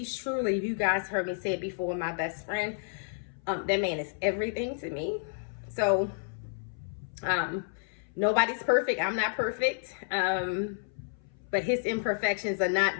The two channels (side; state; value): right; silent; 57 dB below the other